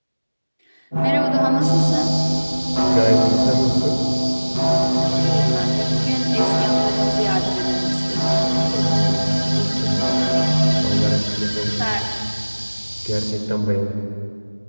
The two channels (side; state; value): both; inverted; correlation -1.00